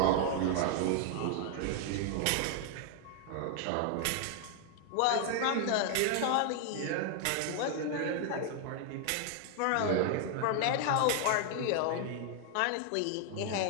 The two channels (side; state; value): both; different; correlation 0.00